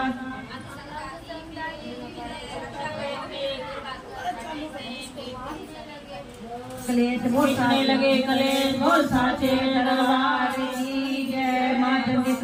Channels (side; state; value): both; identical; correlation 1.00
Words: कलेश पूछने लगे कलेश बोल साचे दरबार। जय माँ चंडी